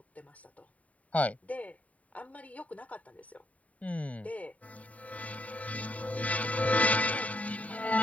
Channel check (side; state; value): right; late; 0.069 ms